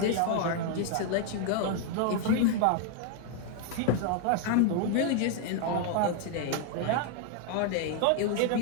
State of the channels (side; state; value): both; different; correlation 0.00